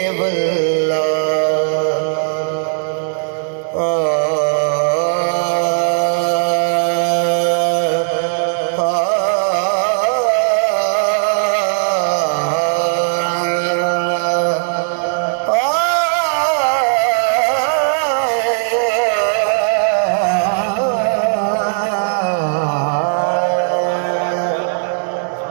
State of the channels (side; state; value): left; silent; digital silence